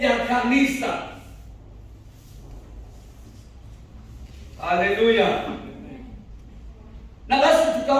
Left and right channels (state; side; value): identical; both; correlation 1.00